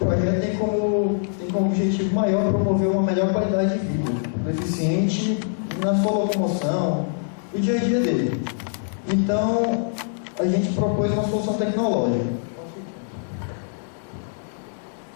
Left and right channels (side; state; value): right; silent; digital silence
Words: O projeto tem como objetivo maior promover uma melhor qualidade de vida do deficiente na sua locomoção, no dia a dia dele. Então, a gente propôs uma solução tecnológica.